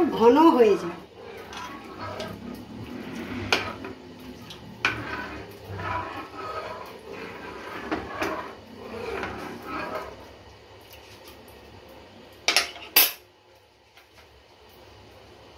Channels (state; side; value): identical; both; correlation 1.00